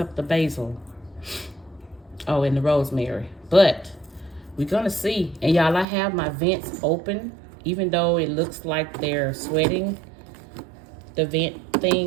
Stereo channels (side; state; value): left; drops out; at 5.9 s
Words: the basil. Oh, and the rosemary. But we're gonna see. And y'all, I have my vents open, even though it looks like they're sweating. The vent